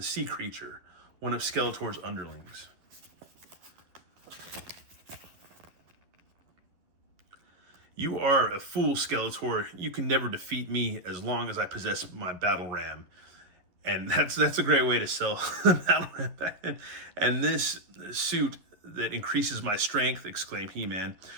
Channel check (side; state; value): left; late; 11 ms